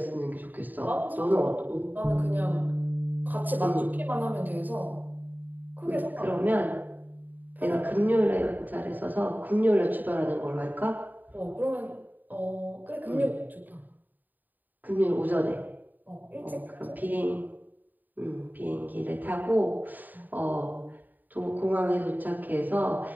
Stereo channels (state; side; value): late; left; 0.087 ms